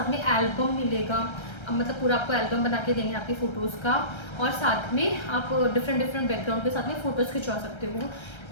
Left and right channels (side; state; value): right; late; 1.3 ms